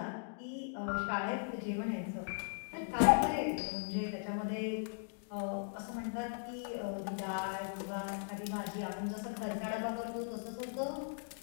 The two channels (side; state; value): right; silent; digital silence